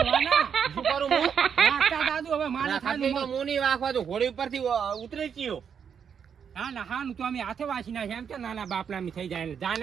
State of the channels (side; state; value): left; quieter; 7.3 dB